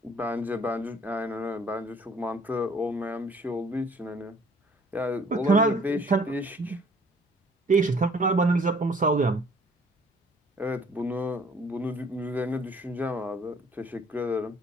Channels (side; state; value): both; normal; correlation 0.57